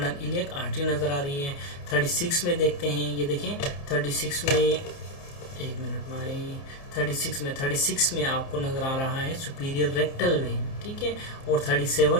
इलियक आर्टरी नज़र आ रही है। 36 में देखते हैं, ये देखें 36 में, एक मिनट भाई, 36 में आपको नज़र आ रहा है सुपीरियर रेक्टल वेन, ठीक है। और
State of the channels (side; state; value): right; late; 29 ms